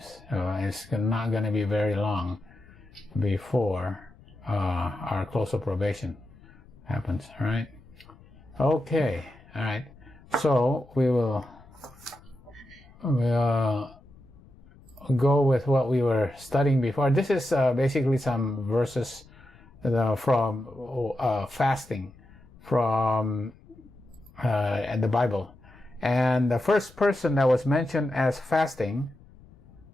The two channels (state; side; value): noise; left; rumble, 24 dB below the sound